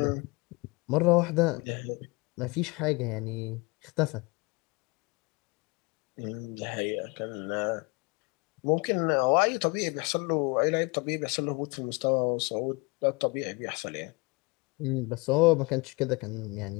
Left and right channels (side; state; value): right; quieter; 27.5 dB